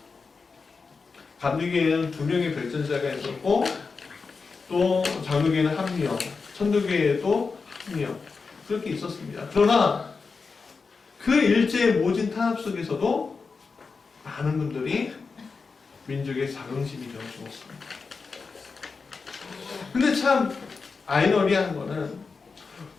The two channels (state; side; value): quieter; right; 4.7 dB